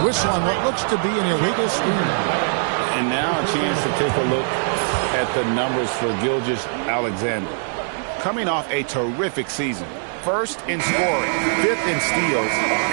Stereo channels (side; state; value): left; silent; digital silence